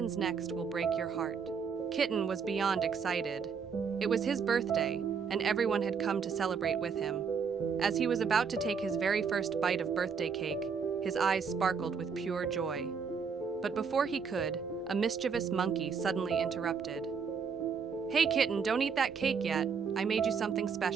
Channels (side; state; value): left; quieter; 6.1 dB